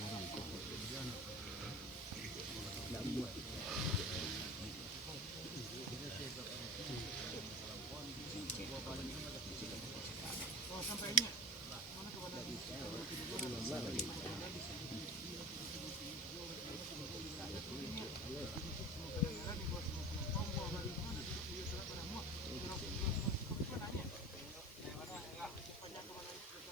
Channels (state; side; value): noise; right; hiss, 18 dB below the sound